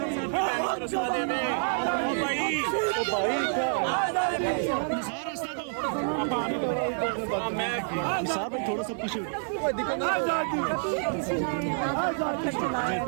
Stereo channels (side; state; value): left; silent; 59 dB below the other